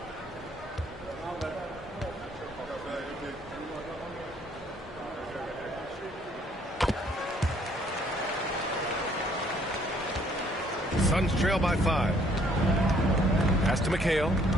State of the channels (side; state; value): both; normal; correlation 0.63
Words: Suns trail by 5. Pass to McHale.